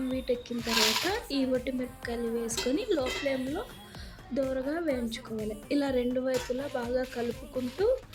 వీటెక్కిన తర్వాత ఈ మిరపకాయలు వేసుకొని లో ఫ్లేమ్లో దోరగా వేయించుకోవాలి. ఇలా రెండు వైపులా బాగా కలుపుకుంటూ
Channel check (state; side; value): identical; both; correlation 1.00